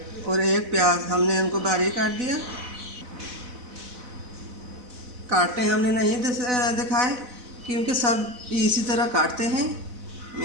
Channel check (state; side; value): late; left; 4.0 ms